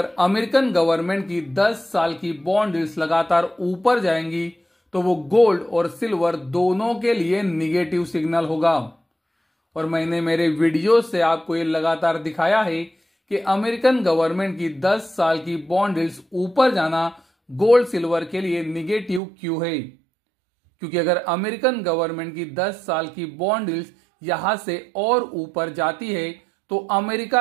अमेरिकन गवर्नमेंट की 10 साल की बॉन्ड यील्ड्स लगातार ऊपर जाएंगी तो वो गोल्ड और सिल्वर दोनों के लिए निगेटिव सिग्नल होगा। और मैंने मेरे वीडियो से आपको ये लगातार दिखाया है कि अमेरिकन गवर्नमेंट की 10 साल की बॉन्ड यील्ड्स ऊपर जाना गोल्ड सिल्वर के लिए निगेटिव क्यों है। क्योंकि अगर अमेरिकन गवर्नमेंट की 10 साल की बॉन्ड यील्ड्स यहां से और ऊपर जाती है तो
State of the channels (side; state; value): left; drops out; at 19.2 s